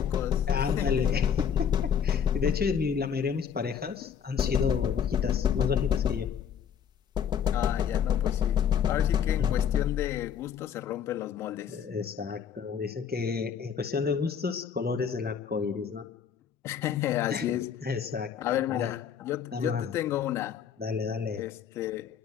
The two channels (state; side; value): quieter; right; 7.9 dB